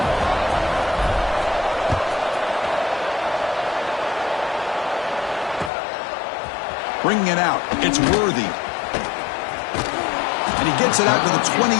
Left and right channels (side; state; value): right; drops out; at 5.7 s